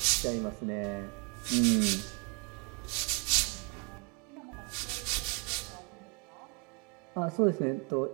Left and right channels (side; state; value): left; quieter; 31.2 dB